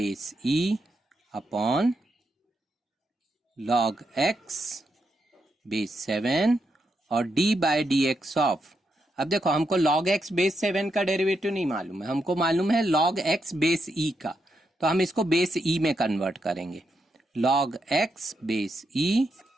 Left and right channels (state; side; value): normal; both; correlation 0.82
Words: e upon log x base 7 और d/dx ऑफ, अब देखो हमको log x बेस 7 का डेरिवेटिव नहीं मालूम है, हमको मालूम है log x बेस e का, तो हम इसको बेस e में कन्वर्ट करेंगे। log x base e